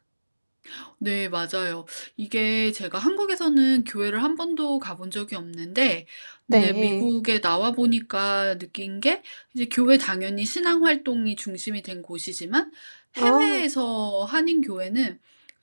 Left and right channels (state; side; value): inverted; both; correlation -1.00